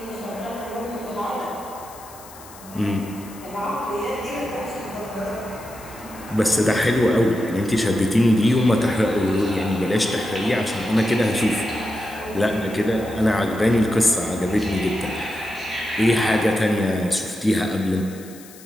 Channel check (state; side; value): noise; left; hiss, 20 dB below the sound